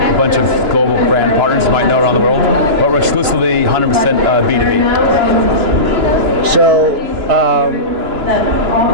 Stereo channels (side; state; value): left; late; 2.9 ms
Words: a bunch of global brand partners you might know around the world, but we're exclusively 100% B2B. So,